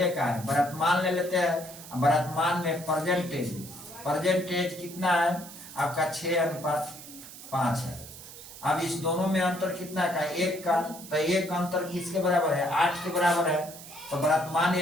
का है, वर्तमान ले लेते हैं। वर्तमान में परसेंटेज कितना है आपका, 6:5 है। अब इस दोनों में अंतर कितना का, 1 का, तो 1 का अंतर किसके बराबर है, 8 के बराबर है। तो वर्तमान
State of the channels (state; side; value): noise; right; hiss, 15 dB below the sound